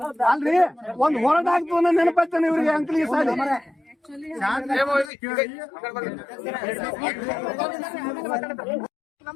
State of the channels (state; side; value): drops out; right; at 5.1 s